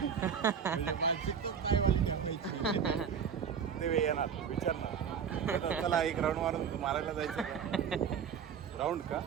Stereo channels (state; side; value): quieter; left; 7.2 dB